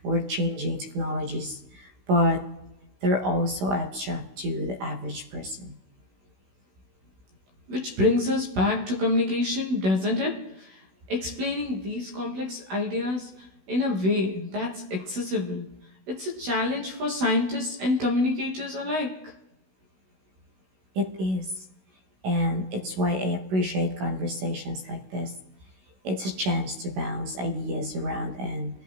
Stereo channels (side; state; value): left; late; 16 ms